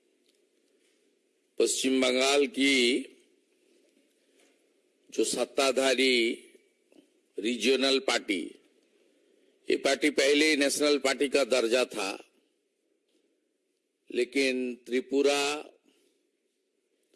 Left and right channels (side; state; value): both; identical; correlation 1.00